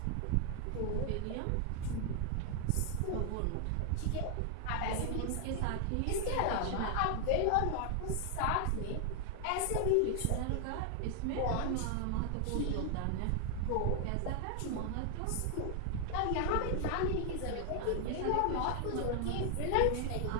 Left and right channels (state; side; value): different; both; correlation 0.00